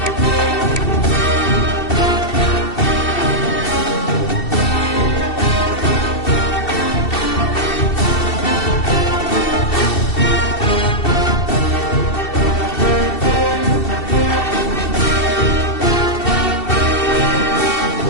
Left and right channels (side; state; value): right; late; 2.7 ms